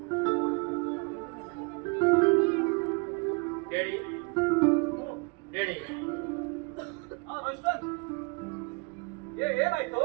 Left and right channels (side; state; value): left; quieter; 32.4 dB